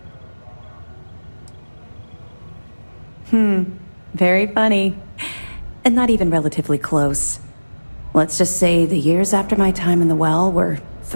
Very funny. And not even relatively close. Let's just say the years after my time in the Well were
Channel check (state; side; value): inverted; both; correlation -1.00